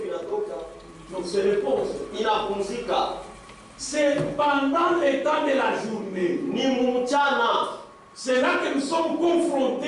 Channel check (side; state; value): both; identical; correlation 1.00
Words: Donc se repose. C'est pendant le temps de la journée. C'est là que nous sommes